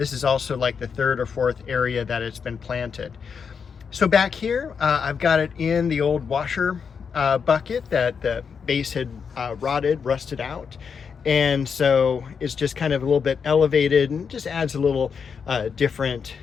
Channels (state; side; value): quieter; right; 6.2 dB